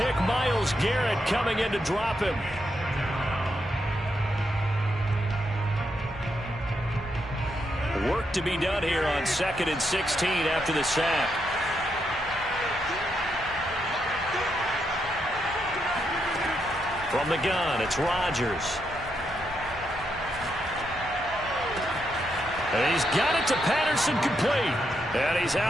Myles Garrett, coming in to drop him. Work to be done here on 2nd and 16 after the sack. From the gun, it's Rodgers. And he's got it to Patterson, complete. And he's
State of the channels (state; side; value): normal; both; correlation 0.81